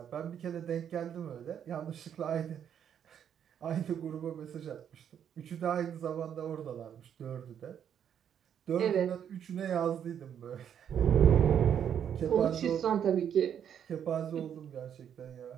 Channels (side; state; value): left; quieter; 8.8 dB